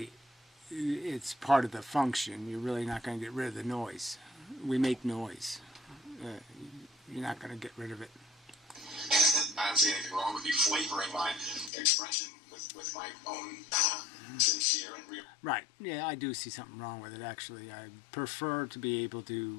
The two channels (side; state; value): right; drops out; at 11.7 s